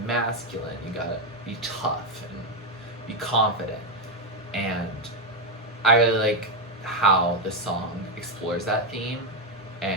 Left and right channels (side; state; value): both; normal; correlation 0.06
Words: masculine, you gotta be tough and be confident. And I really like how the song explores that theme